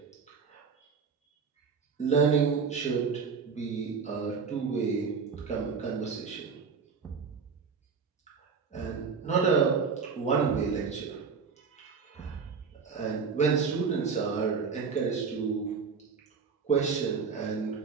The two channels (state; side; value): quieter; left; 5.5 dB